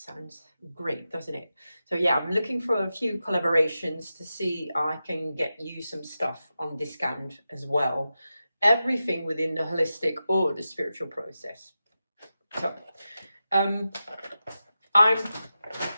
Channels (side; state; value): both; inverted; correlation -0.92